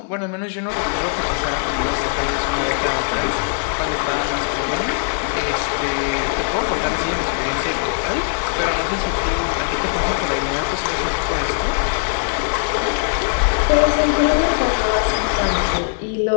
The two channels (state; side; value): silent; right; 65 dB below the other